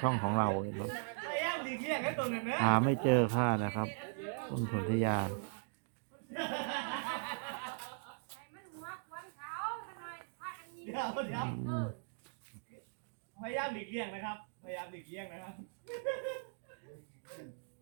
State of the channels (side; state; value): left; silent; digital silence